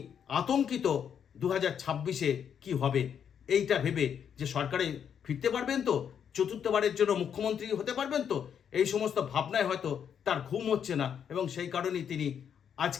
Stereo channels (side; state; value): right; quieter; 8.1 dB